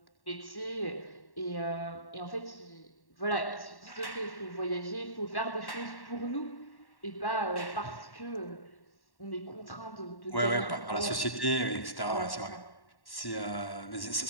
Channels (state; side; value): late; right; 1.1 ms